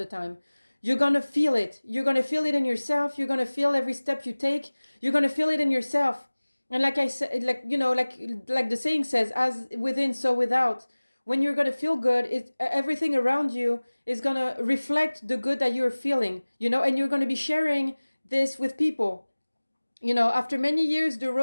time. You're going to feel it. You're going to feel it in yourself. You're going to feel every step you take. You're going to feel it in yourself. And like I said, like, you know, like the saying says, as within, so without. when you're going to feel good, everything around you is going to reflect the good that you're feeling, and you're going to be sharing this with people. After many years, the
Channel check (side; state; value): both; inverted; correlation -1.00